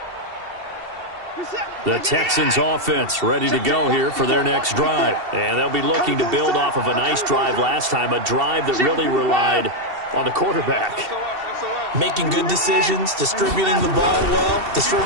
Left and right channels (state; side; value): late; left; 2.7 ms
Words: The Texans offense ready to go here for their next drive. And they'll be looking to build off of a nice drive last time, a drive that really relied on the quarterback. Making good decisions, distributing the ball well,